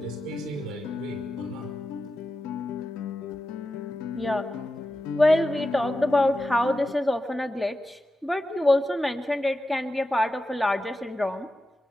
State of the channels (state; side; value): normal; both; correlation 0.91